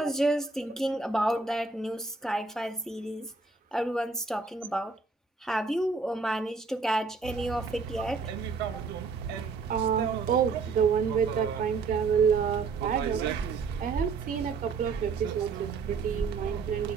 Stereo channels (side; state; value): left; quieter; 4.6 dB